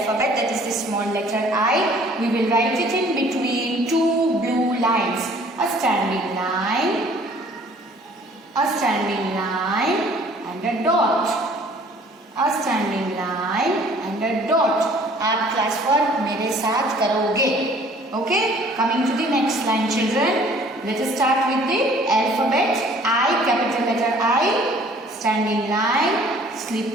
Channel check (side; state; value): both; normal; correlation 0.54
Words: that is the small letter I, we will write it in between 2 blue lines. A standing line, and a dot. A standing line and a dot. आप class work मेरे साथ करोगे. Okay? Coming to the next line, children. Let us start with the alphabet. I, capital letter I. Standing line,